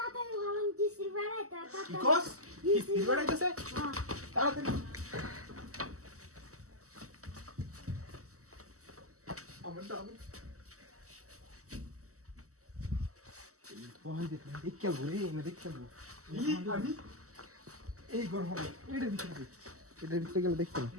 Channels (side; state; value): left; late; 0.65 ms